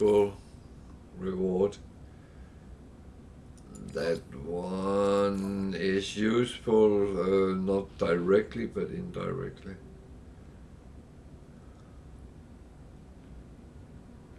reward. That one is useful, not directly but indirectly.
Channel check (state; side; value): identical; both; correlation 1.00